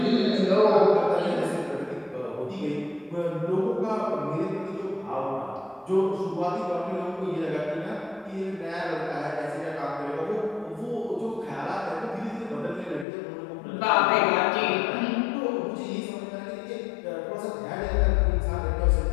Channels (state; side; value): drops out; right; at 13.1 s